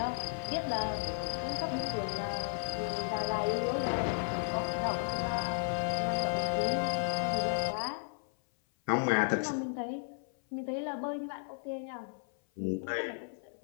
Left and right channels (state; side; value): silent; right; 55 dB below the other